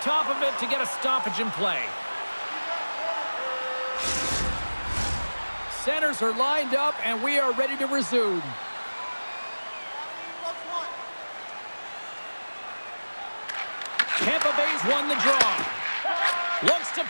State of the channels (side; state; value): both; inverted; correlation -1.00